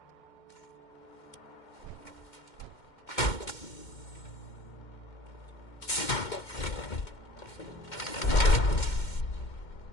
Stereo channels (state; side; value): late; right; 2.1 ms